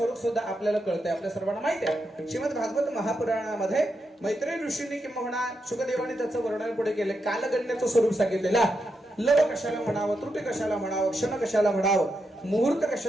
सुद्धा आपल्याला कळतंय, आपल्या सर्वांना माहिती आहे. श्रीमद भागवत महापुराणामध्ये मैत्रेय ऋषींनी किंवा शुकदेवाने त्याचं वर्णन पुढे केले. कालगणनेचं स्वरूप सांगितलेलं, लव कशाला म्हणावं, त्रुटी कशाला म्हणावं, क्षण कशाला म्हणावं, मुहूर्त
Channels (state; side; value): normal; both; correlation 0.84